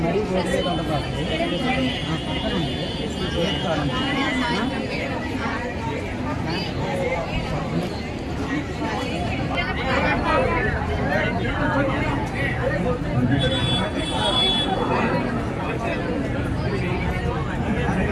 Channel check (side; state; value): both; identical; correlation 1.00